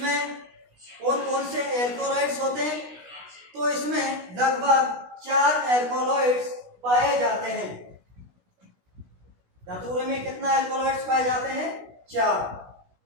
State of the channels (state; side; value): late; left; 16 ms